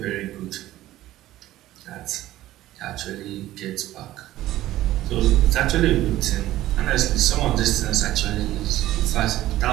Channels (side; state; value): left; quieter; 14.9 dB